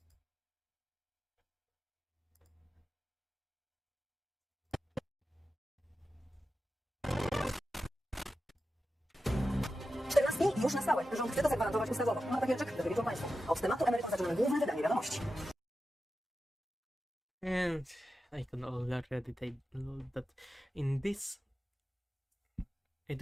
Już na stałe. Rząd chce to zagwarantować ustawowo. Ma takie rzeczy, które wiedzą Państwo. Od tematu emerytur zaczynamy główne wydanie wiadomości. And I can already take note that in this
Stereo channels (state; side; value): normal; both; correlation 0.92